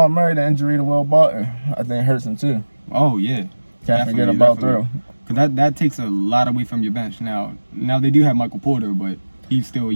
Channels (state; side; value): inverted; both; correlation -1.00